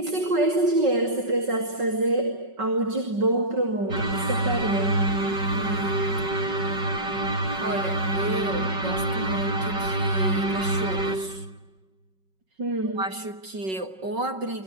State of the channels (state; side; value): late; left; 5.3 ms